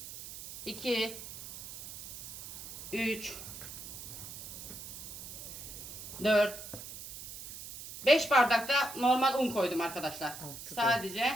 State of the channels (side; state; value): right; noise; hiss, 11 dB below the sound